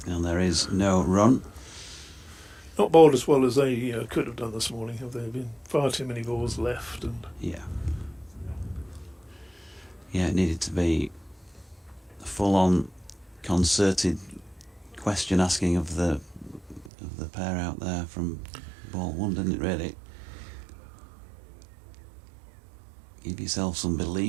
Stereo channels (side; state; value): left; drops out; at 16.9 s